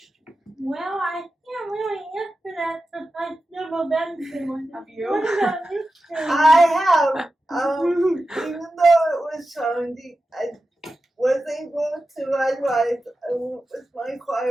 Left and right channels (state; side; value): normal; both; correlation 0.92